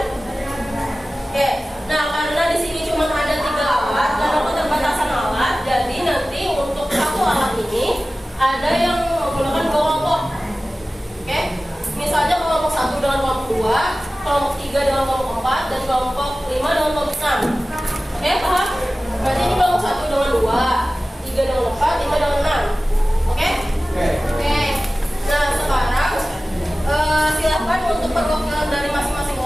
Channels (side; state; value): both; normal; correlation 0.96